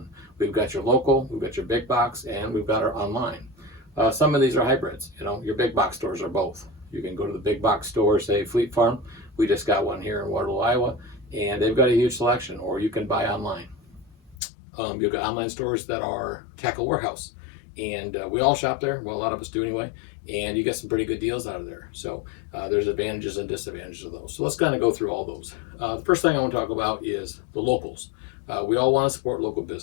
We've got your local, we've got your big box, and we've got our online. Some of these are hybrids. Your big box stores are both. You can go to the big box store, say Fleet Farm. We just got one here in Waterloo, Iowa, and they've got a huge selection, or you can buy online. You've got online stores that are Tackle Warehouse, and we all shop there. Well, a lot of us do anyway, and you get some pretty good deals out of there. So there's advantages and disadvantages of those. So let's kind of go through all those. The first thing I want to talk about is the locals. We all want to support local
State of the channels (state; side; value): drops out; right; at 14.4 s